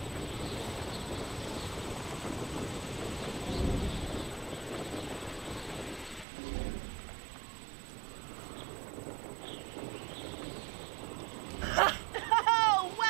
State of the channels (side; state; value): left; drops out; at 6.2 s